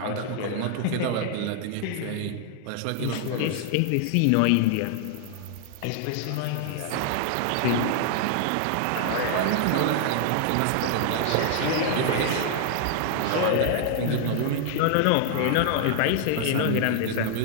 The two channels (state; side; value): different; both; correlation 0.00